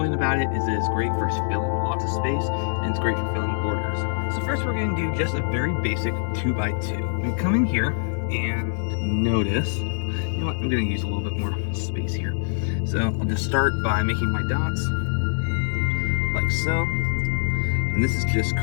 about it is that it's great for filling lots of space, and it's great for filling borders. So first we're going to do just a very basic 2x2. I'm going to come in here and notice, you know what, I'm going to use a little bit more space here. So I'll just start by making my dots, like so. And this is just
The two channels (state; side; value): silent; right; digital silence